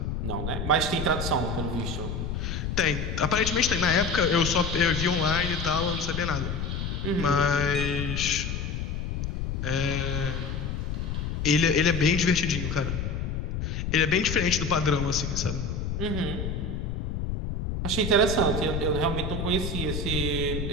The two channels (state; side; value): noise; left; rumble, 3 dB below the sound